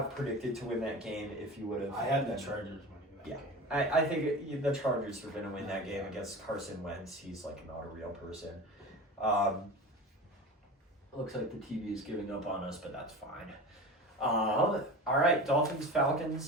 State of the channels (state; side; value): normal; both; correlation 0.31